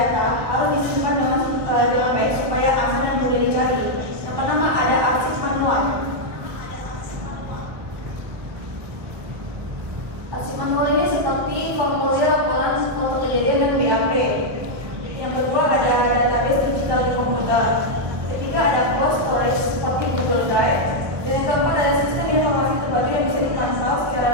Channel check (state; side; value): late; left; 1.2 ms